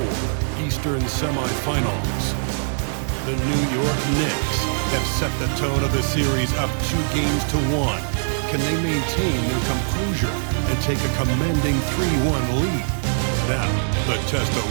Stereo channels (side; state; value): left; silent; digital silence